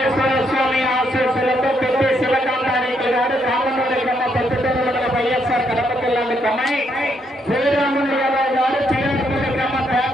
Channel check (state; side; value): normal; both; correlation 0.75